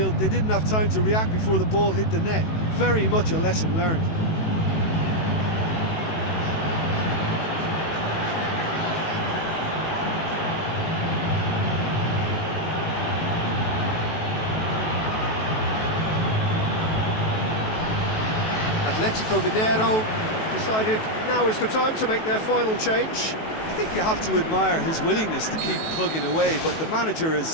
they didn't have time to react before the ball hit the net. Very much a lesson learned. Atletico Mineiro decided now is the time to make their final change. I think you have to admire his willingness to keep plugging away, but the manager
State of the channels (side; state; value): right; late; 18 ms